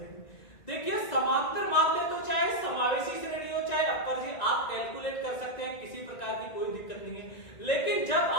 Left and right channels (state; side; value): late; right; 1.9 ms